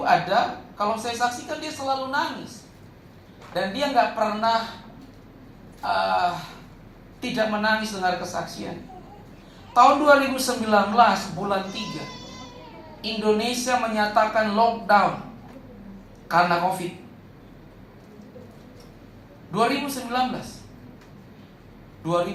ada, kalau saya saksikan dia selalu nangis. Dan dia gak pernah tidak menangis dengar kesaksian. Tahun 2019 bulan 3, Indonesia menyatakan lockdown karena COVID. 2019,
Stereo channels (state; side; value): identical; both; correlation 1.00